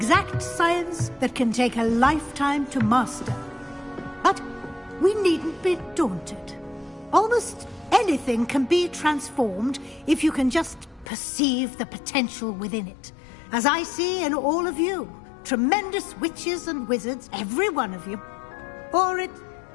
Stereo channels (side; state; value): right; drops out; at 11.1 s